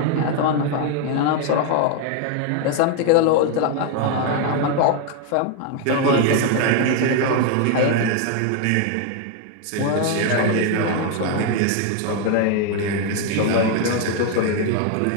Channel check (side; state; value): both; different; correlation 0.01